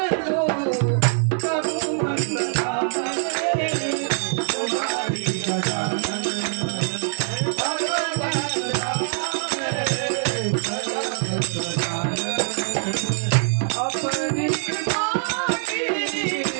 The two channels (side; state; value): left; silent; digital silence